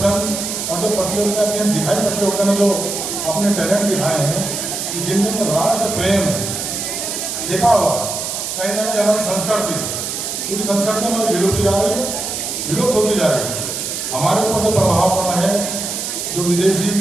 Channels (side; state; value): right; noise; hiss, 4 dB below the sound